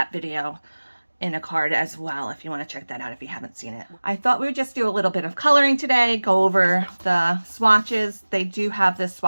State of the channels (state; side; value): inverted; both; correlation -1.00